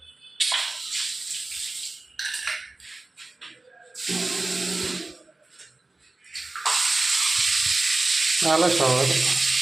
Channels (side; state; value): left; quieter; 3.1 dB